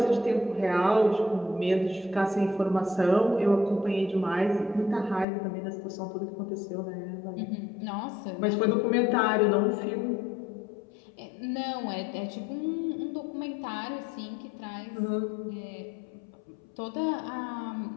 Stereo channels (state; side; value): drops out; right; at 5.2 s